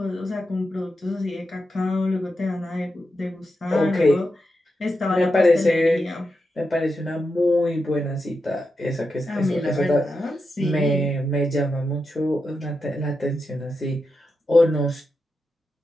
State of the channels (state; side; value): normal; both; correlation 0.87